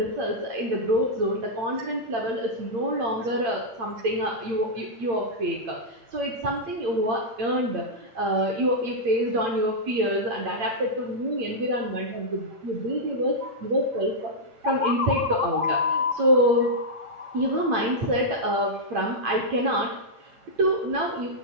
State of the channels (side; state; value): left; late; 8.8 ms